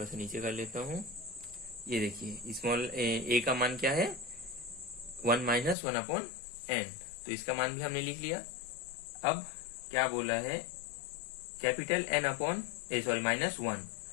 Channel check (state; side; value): drops out; right; at 5.8 s